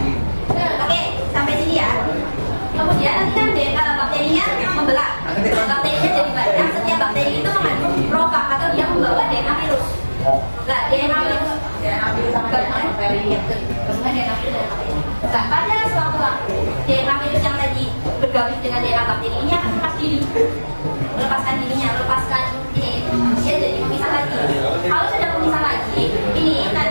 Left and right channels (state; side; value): inverted; both; correlation -1.00